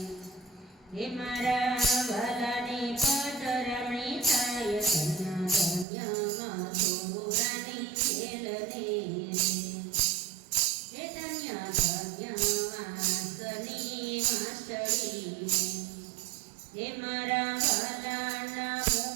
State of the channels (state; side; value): drops out; left; at 5.9 s